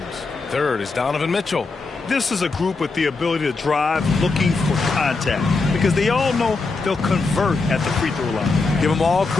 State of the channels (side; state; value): right; quieter; 3.9 dB